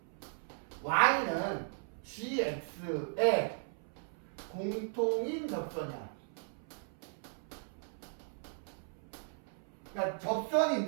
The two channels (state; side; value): silent; left; 53 dB below the other